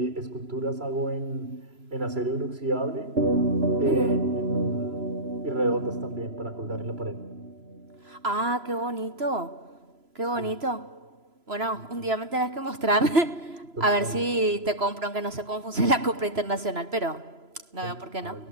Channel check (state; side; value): late; left; 3.0 ms